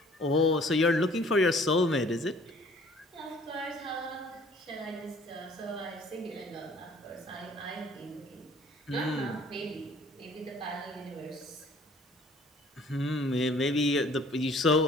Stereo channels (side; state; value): both; normal; correlation 0.54